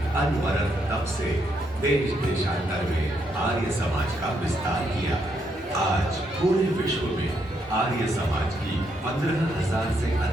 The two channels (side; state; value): both; normal; correlation 0.77